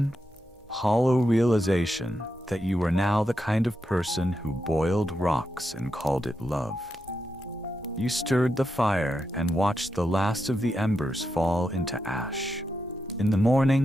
hollow realization that you were now the kind of person who boiled rocks and called it love. You stirred the fire and watched the last of the embers fall into ash. In the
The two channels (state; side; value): normal; both; correlation 0.86